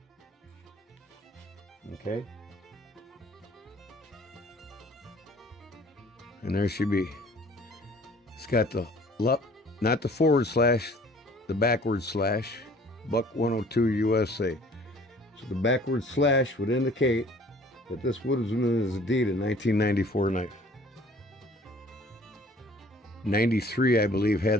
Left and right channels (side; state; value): both; normal; correlation 0.53